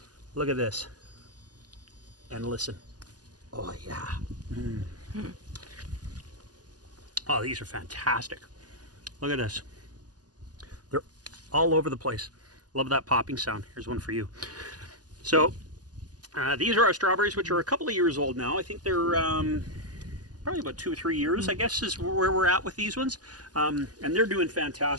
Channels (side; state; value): left; late; 0.68 ms